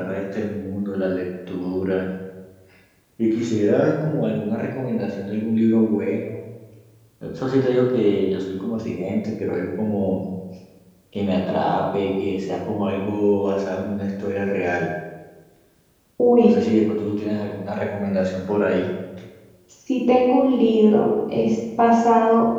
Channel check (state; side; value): identical; both; correlation 1.00